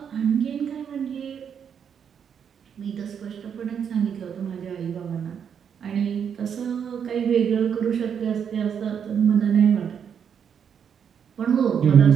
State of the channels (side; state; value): left; quieter; 7.7 dB